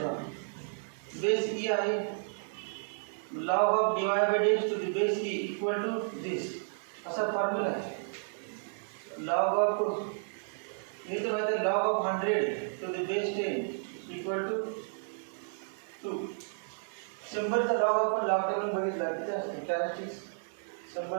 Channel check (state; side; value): silent; left; digital silence